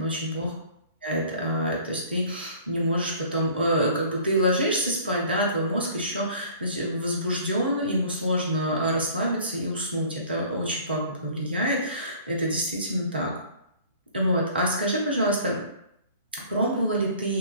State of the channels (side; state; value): both; inverted; correlation -0.50